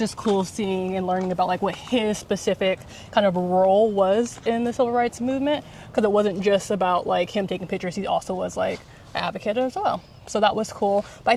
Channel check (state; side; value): identical; both; correlation 1.00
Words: cool seeing and learning about like what his specific kind of role was in the civil rights movement, because it wasn't just about like him taking pictures. He also was like an advocate as well. So that was cool. But I